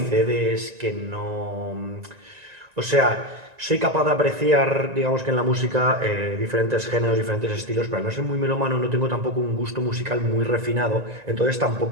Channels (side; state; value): left; late; 1.9 ms